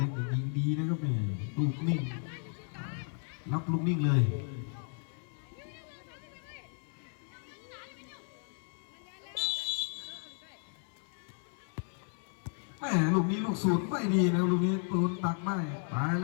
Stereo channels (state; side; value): silent; right; 55 dB below the other